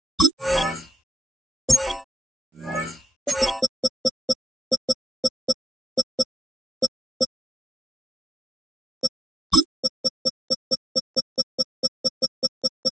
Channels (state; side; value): normal; both; correlation 0.86